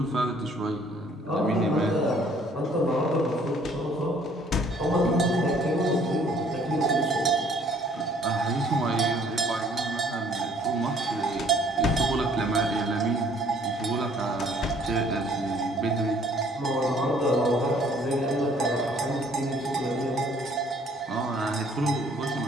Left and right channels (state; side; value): normal; both; correlation 0.59